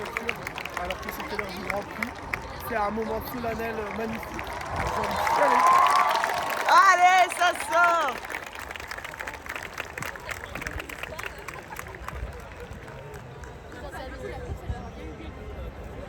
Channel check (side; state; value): both; identical; correlation 1.00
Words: alors que c'était l'heure du Grand Prix. C'est un moment solennel magnifique. J'ai envie de chialer. Allez, ça sort!